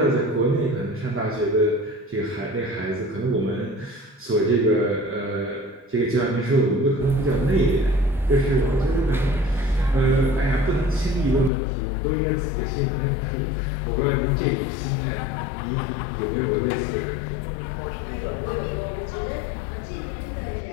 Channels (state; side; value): drops out; right; at 11.5 s